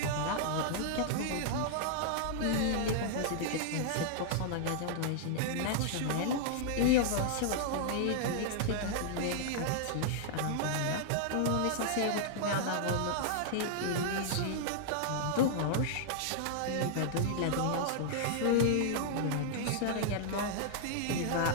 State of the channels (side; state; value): both; different; correlation -0.01